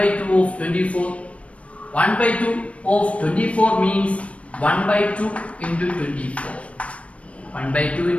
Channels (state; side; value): late; right; 0.063 ms